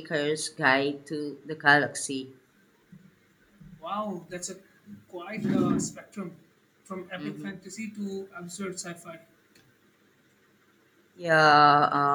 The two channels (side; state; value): both; identical; correlation 1.00